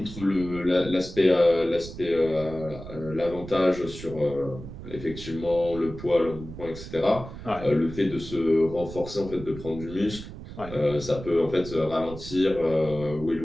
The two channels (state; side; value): noise; right; rumble, 12 dB below the sound